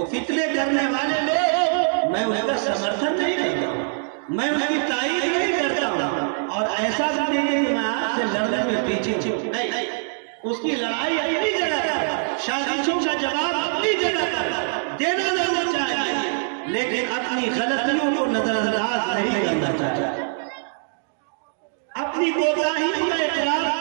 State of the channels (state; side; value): silent; left; digital silence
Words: فتنے کرنے والے لوگ، میں ان کا سمرتھن نہیں کرتا ہوں، میں ان کی تائید نہیں کرتا ہوں، اور ایسا بھی نہیں کہ میں آپ سے لڑنے میں پیچھے نہیں، اس کی لڑائی اپنی جگہ پر، سازشوں کا جواب اپنی جگہ پر دینا ضرور چاہیے، لیکن اپنی غلطیوں کو نظر انداز نہیں کرنا چاہیے، اپنی کوتاہیوں کا اقرار